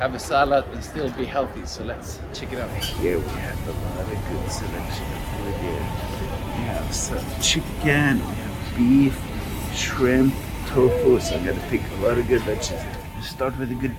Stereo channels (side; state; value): both; identical; correlation 1.00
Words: have a salad and still be healthy. So let's check it out. Here we have a lot of good selection of food here. We have some chicken, we have beef, shrimp, tofu. So I'm going to pick a lot of good veggies. Start with a